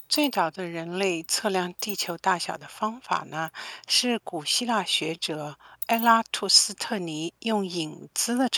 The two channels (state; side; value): identical; both; correlation 1.00